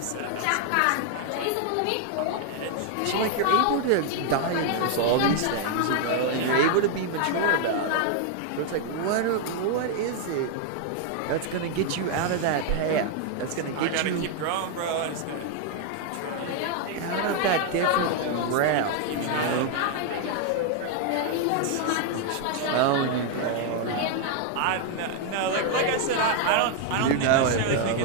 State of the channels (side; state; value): both; different; correlation 0.00